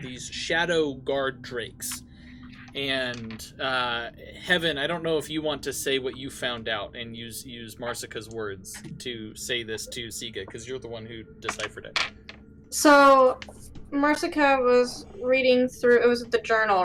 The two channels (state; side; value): identical; both; correlation 1.00